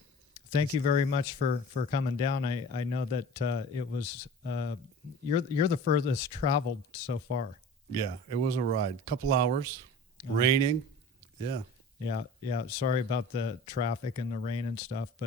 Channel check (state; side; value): normal; both; correlation 0.40